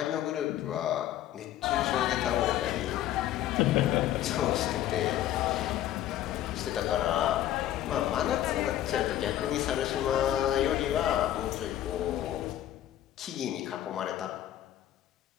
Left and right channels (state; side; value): quieter; right; 12.5 dB